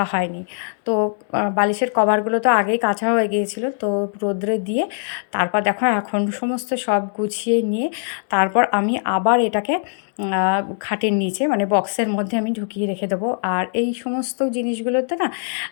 হয়নি। তো বালিশের কভারগুলো তো আগেই কাঁচা হয়ে গিয়েছিলো, তো রোদ্রে দিয়ে তারপর দেখো এখন সমস্ত সব গুছিয়ে নিয়ে তারপর আমি আবার এটাকে খাটের নিচে মানে বক্সের মধ্যে আমি ঢুকিয়ে রেখে দেবো। আর এই সমস্ত জিনিসগুলোতে না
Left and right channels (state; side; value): silent; right; 65 dB below the other